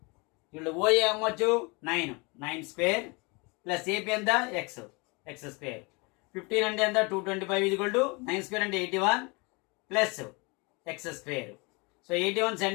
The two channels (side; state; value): right; quieter; 28.7 dB